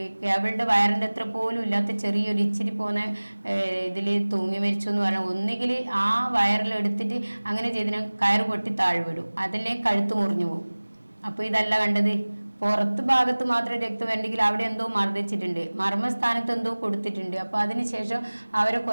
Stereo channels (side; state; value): both; inverted; correlation -1.00